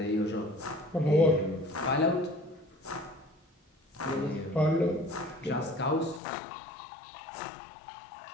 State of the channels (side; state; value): right; drops out; at 6.2 s